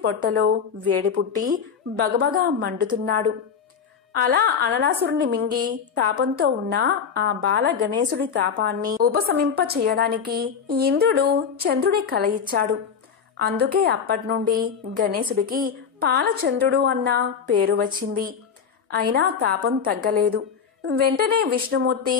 పొట్టలో వేడి పుట్టి బగబగా మండుతున్నాడు. అలా అనలాసురుణ్ణి మింగి తాపంతో ఉన్న ఆ బాల గణేశుడి తాపాన్ని ఉపశమింప చేయడానికి ఇంద్రుడు చంద్రుడి కల ఇచ్చాడు. అందుకే అప్పటినుండి గణేశుడికి పాలచంద్రుడు అన్న పేరు వచ్చింది. అయినా తాపం తగ్గలేదు. వెంటనే విష్ణుమూర్తి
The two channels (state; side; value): quieter; right; 6.8 dB